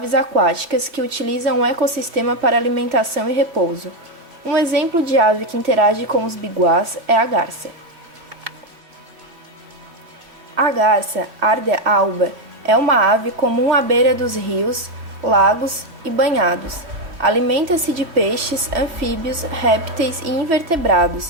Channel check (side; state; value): left; late; 3.0 ms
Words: aquáticas que utilizam o ecossistema para alimentação e repouso. Um exemplo de ave que interage com os biguás é a garça. A garça, Ardea alba, é uma ave comum à beira dos rios, lagos e banhados. Alimenta-se de peixes, anfíbios, répteis e